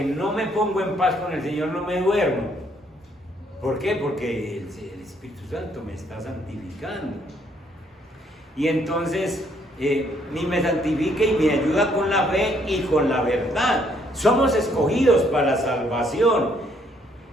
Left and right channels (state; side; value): normal; both; correlation 0.68